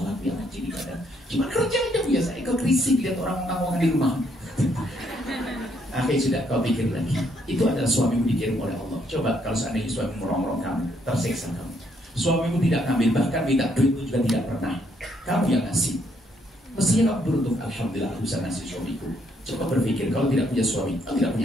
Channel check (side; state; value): both; normal; correlation 0.71